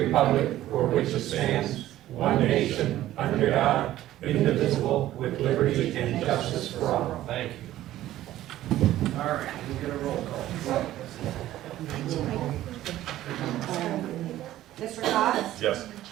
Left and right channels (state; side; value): quieter; left; 14.1 dB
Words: for which it stands, one nation, under God, indivisible, with liberty and justice for all. Thank you. All right, we'll get a roll call. Mr. Cox? Yes.